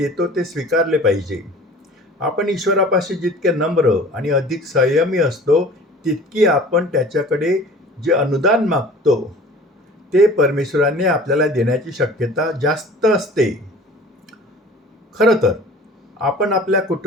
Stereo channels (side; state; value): both; normal; correlation 0.44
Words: ते स्वीकारले पाहिजे. आपण ईश्वरापाशी जितके नम्र आणि अधिक संयमी असतो तितकी आपण त्याच्याकडे जे अनुदान मागतो ते परमेश्वराने आपल्याला देण्याची शक्यता जास्त असते. खरं तर आपण आपल्या